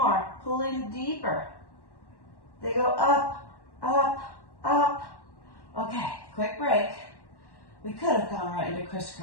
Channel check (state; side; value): late; right; 1.1 ms